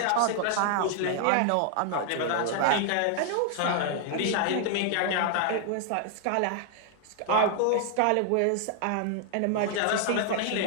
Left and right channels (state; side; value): different; both; correlation 0.00